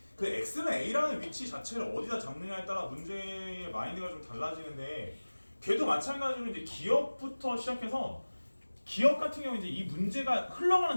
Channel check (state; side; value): inverted; both; correlation -1.00